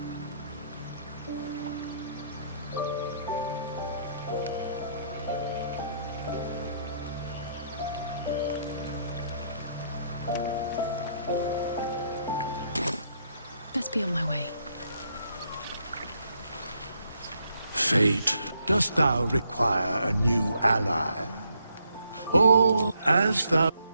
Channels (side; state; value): both; inverted; correlation -0.74